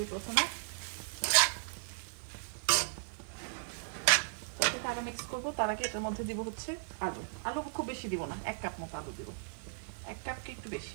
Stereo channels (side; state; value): left; silent; digital silence